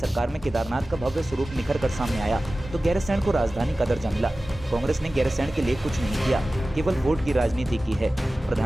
में केदारनाथ का भव्य स्वरूप निखर कर सामने आया तो गैरसैंण को राजधानी का दर्जा मिला। कांग्रेस ने गैरसैंण के लिए कुछ नहीं किया, केवल वोट की राजनीति की है।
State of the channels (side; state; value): both; normal; correlation 0.96